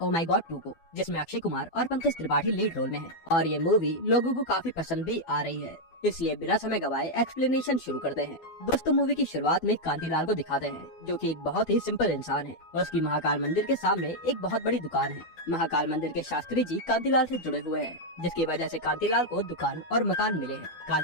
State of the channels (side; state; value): right; late; 12 ms